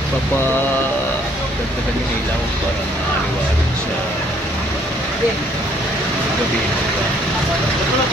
Dagdagan yung ilaw para maaliwanan sa gabi.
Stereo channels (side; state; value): both; normal; correlation 0.64